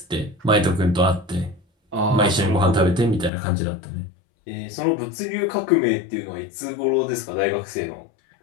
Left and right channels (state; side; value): drops out; right; at 3.3 s